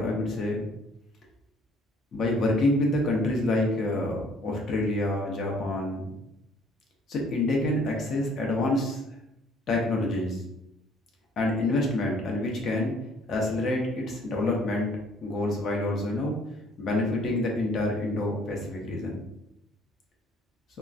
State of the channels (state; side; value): normal; both; correlation 0.59